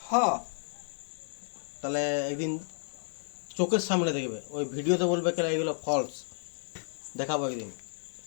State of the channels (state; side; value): silent; right; digital silence